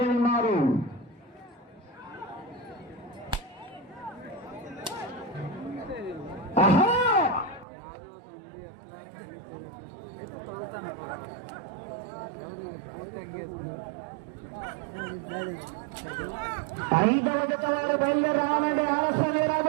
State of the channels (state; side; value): drops out; left; at 7.7 s